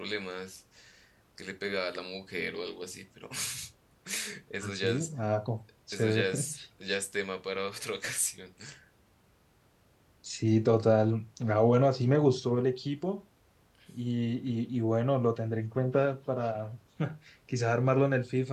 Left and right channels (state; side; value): identical; both; correlation 1.00